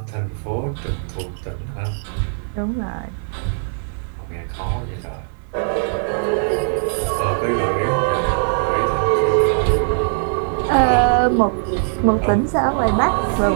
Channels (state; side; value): silent; left; 57 dB below the other